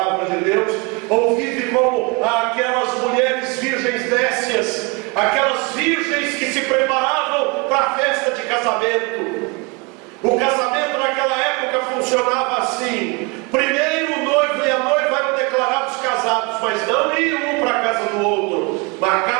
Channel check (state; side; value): quieter; left; 28.8 dB